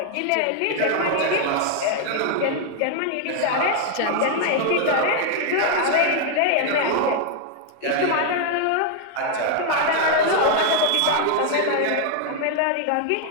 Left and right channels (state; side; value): different; both; correlation 0.00